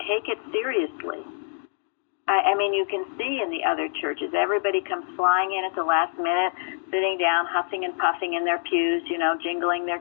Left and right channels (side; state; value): right; silent; digital silence